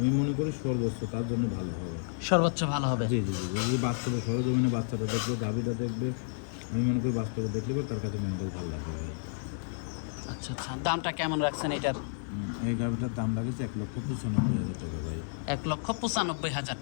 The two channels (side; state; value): right; silent; 57 dB below the other